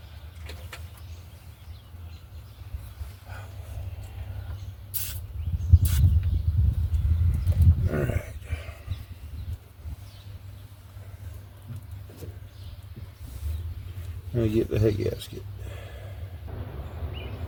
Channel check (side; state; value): both; identical; correlation 1.00